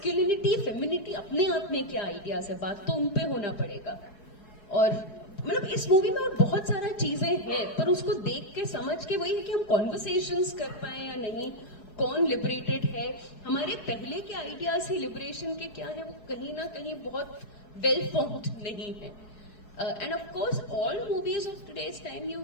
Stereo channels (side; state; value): right; late; 4.7 ms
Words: femininity अपने आप में क्या आइडियाज है, बात तो उन पे होना पड़ेगा. और मतलब इस मूवी में और बहुत सारा चीजें हैं, पर उसको देख के समझ के वही है कि हम कॉन्वर्सेशंस कर पाए या नहीं, कौन लिबरेटेड है, हमारे पहले के आइडियाज है लिबरेशन के क्या है, वो कहीं ना कहीं बहुत वेल फॉर्म्ड नहीं है. And of course, all movies of today's time, you